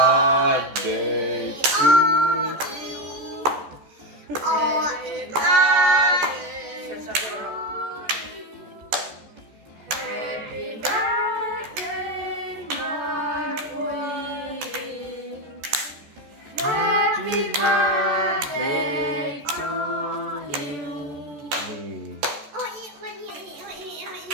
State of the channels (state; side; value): late; left; 14 ms